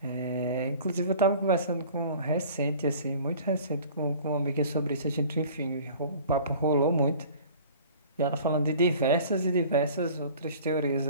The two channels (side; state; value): both; inverted; correlation -0.46